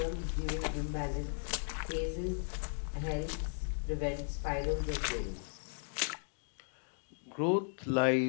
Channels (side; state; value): right; silent; digital silence